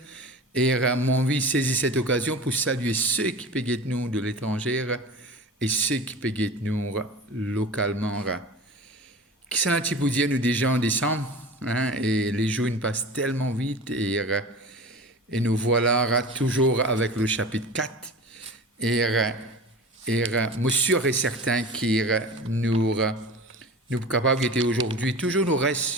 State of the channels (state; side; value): normal; both; correlation 0.35